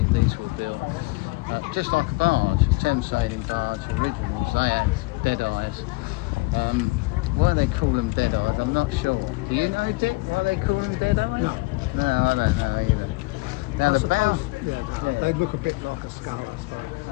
These were built just like a barge, a Thames sailing barge. Originals, they had dead eyes. Why they call them dead eyes, I'm not sure. Do you know, Dick, why they call them dead eyes? No, I don't know either. Now the bow, they look a bit like a skull,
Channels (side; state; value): right; quieter; 25.1 dB